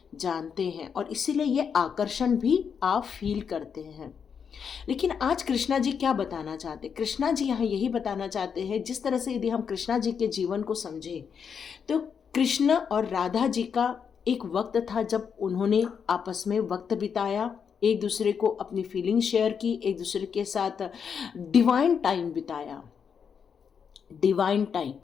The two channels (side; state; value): right; quieter; 6.8 dB